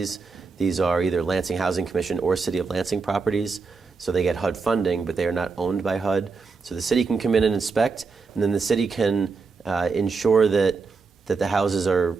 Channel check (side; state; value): left; quieter; 4.6 dB